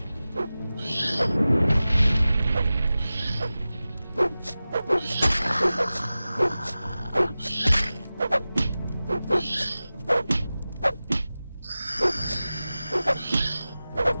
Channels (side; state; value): both; inverted; correlation -0.96